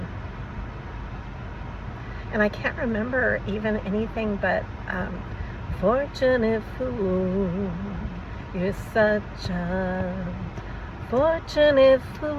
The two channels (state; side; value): identical; both; correlation 1.00